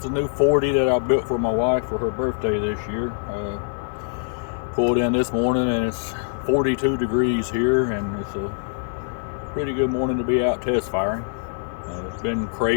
the new 40 that I built for my wife for her birthday this year. Pulled in this morning and it's 42 degrees here, and it's a pretty good morning to be out test firing. It's been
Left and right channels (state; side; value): silent; right; digital silence